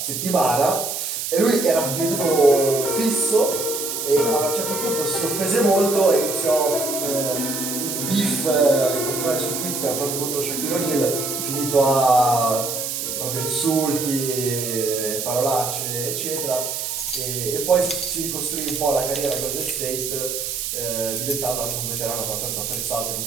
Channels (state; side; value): noise; right; hiss, 3 dB below the sound